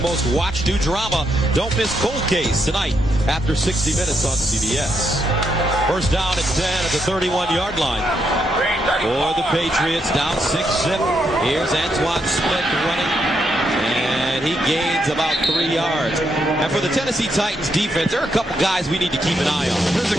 most watched new drama, Don't Miss Cold Case, tonight after 60 minutes on CBS. First down at 10 at the 31-yard line for the Patriots, down 6-zip. Here's Antoine Smith running And he gains about 3 yards. And for the Tennessee Titans defense, there are a couple guys we need to keep an eye on. There's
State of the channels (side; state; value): both; normal; correlation 0.79